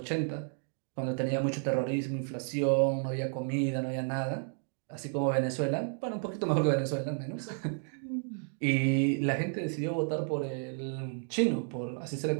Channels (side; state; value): left; silent; 56 dB below the other